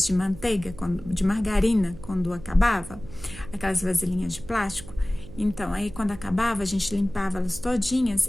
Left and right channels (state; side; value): noise; right; hum, 15 dB below the sound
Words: de manteiga, de margarina, quando acabava, aquelas vasilhinhas de plástico. Então, aí quando acabava, a gente limpava elas todinhas